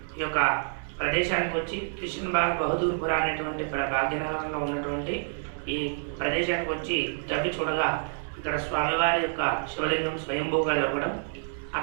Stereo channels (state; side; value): silent; left; 59 dB below the other